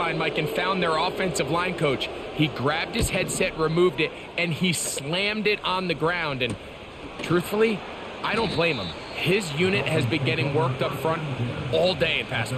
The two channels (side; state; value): both; identical; correlation 1.00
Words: Mike, and found their offensive line coach. He grabbed his headset, removed it, and he slammed it on the ground. And truthfully, I don't blame him. His unit has been getting worked up front all day in pass